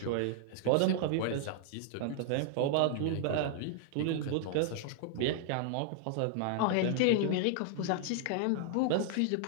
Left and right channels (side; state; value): both; different; correlation -0.01